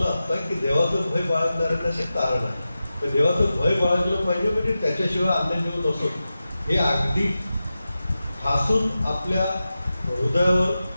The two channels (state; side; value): inverted; both; correlation -0.93